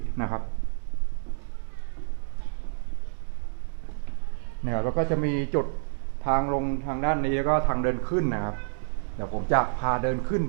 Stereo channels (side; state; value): left; silent; 59 dB below the other